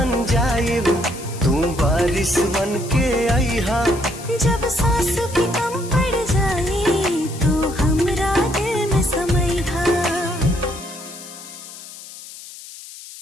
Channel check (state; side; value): noise; left; hiss, 15 dB below the sound